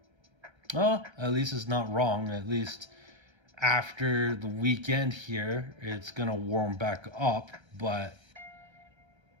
Oh, at least it's not wrong. At least after the weekend here, it's gonna warm back up, but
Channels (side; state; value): left; late; 1.3 ms